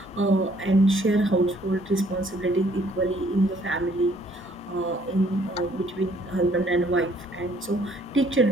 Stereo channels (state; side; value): noise; right; hum, 28 dB below the sound